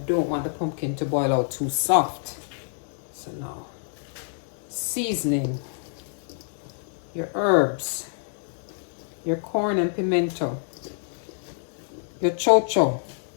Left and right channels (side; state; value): right; silent; digital silence